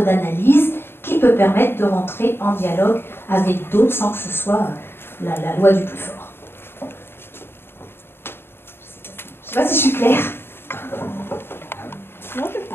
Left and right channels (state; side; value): late; right; 0.11 ms